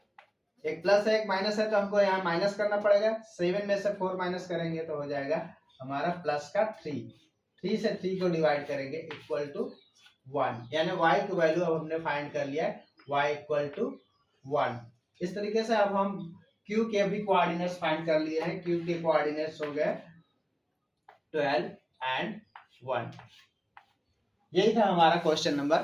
एक प्लस है एक माइनस है तो हमको यहाँ माइनस करना पड़ेगा, 7 में से 4 माइनस करेंगे तो हो जाएगा हमारा प्लस का 3 से 3 को डिवाइड करेंगे इक्वल टू 1, यानी y की वैल्यू अब हमने फाइंड कर लिया है, y इक्वल टू 1। इस तरीके से अब हम q के भी कोऑर्डिनेट्स फाइंड कर लिए हैं, q के कोऑर्डिनेट्स हो गए 12 and 1। यही था हमारा क्वेश्चन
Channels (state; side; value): identical; both; correlation 1.00